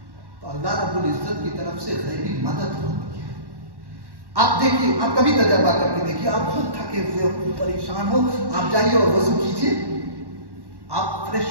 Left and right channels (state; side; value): late; left; 1.1 ms